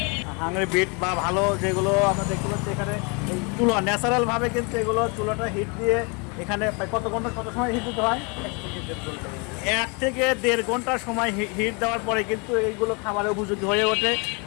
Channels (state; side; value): quieter; right; 32.4 dB